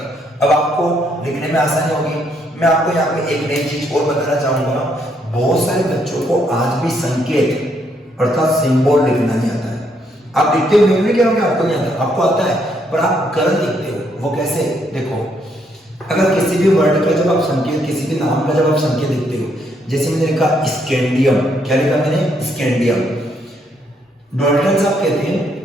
अब आपको लिखने में आसानी होगी। मैं आपको यहाँ पे एक नई चीज और बताना चाहूंगा, बहुत सारे बच्चों को आज भी संकेत अर्थात सिंबल लिखना नहीं आता है। आप लिखते हो, मैं भी कह रहा हूँ आपको नहीं आता, आपको आता है पर आप गलत लिखते हो। वो कैसे, देखो अगर किसी भी वर्ड का जब आप संकेत, किसी भी नाम का जब आप संकेत लिखते हो, जैसे मैंने लिखा स्कैंडियम, क्या लिखा मैंने, स्कैंडियम। डाल्टन साहब कहते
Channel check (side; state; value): both; normal; correlation 0.73